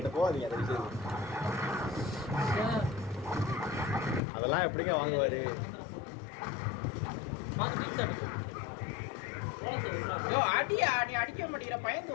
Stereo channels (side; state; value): right; drops out; at 4.2 s